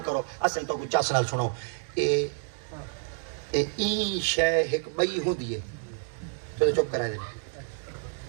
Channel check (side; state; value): left; silent; 59 dB below the other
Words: کرو اسیں تو کوئی چس نال سنو این شے ایک بئی ہوندی ہے تو چپ کرا دے